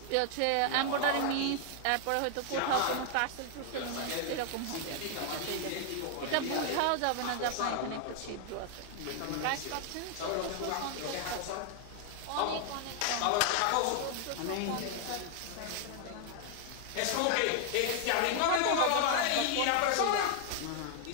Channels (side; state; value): both; different; correlation 0.00